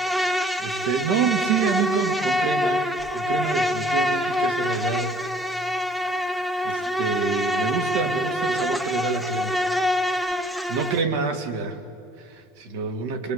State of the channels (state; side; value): normal; both; correlation 0.56